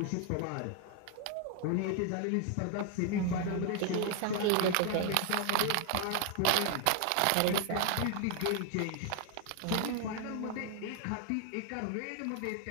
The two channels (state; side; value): different; both; correlation 0.00